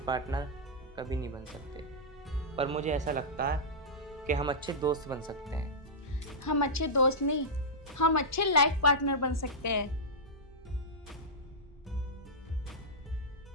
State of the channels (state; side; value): normal; both; correlation -0.11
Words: पार्टनर कभी नहीं बन सकते, पर मुझे ऐसा लगता है कि हम अच्छे दोस्त बन सकते हैं। हम अच्छे दोस्त नहीं, हम अच्छे लाइफ पार्टनर बन सकते हैं।